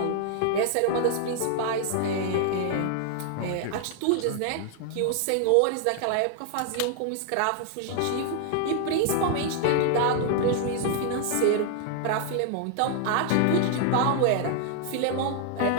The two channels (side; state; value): both; different; correlation 0.00